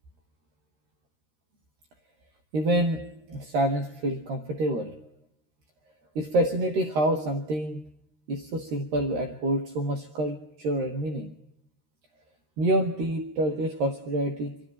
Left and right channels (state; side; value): late; left; 13 ms